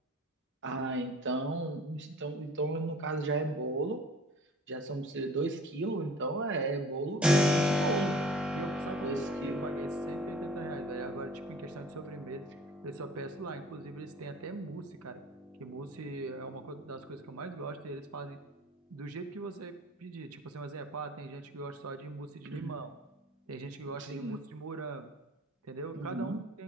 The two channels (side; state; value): both; normal; correlation 0.47